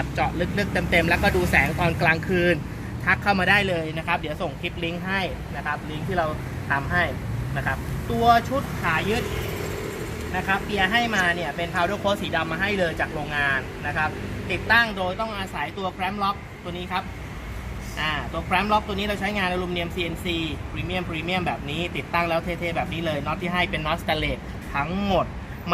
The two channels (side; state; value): both; identical; correlation 1.00